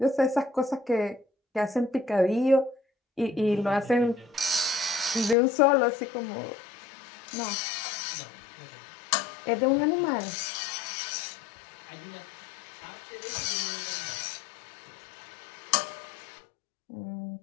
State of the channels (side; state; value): right; drops out; at 5.4 s